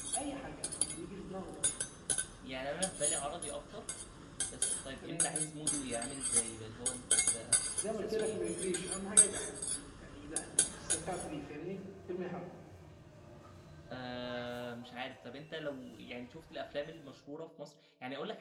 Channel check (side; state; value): both; identical; correlation 1.00